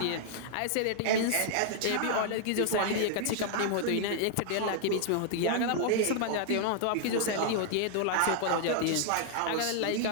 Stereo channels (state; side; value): different; both; correlation -0.01